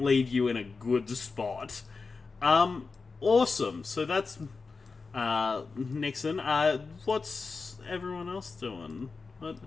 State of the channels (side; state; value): right; quieter; 4.4 dB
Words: you in a good spot. Awesome. So that's Nixon. What's everyone else doing? What?